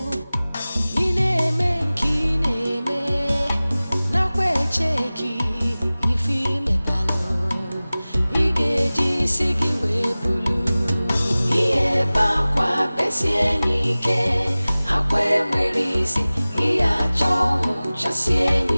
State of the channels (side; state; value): both; inverted; correlation -0.98